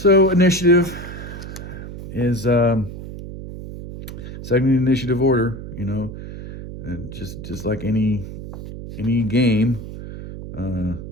initiative is second initiative order, you know, and just like any game,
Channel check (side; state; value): right; noise; hum, 11 dB below the sound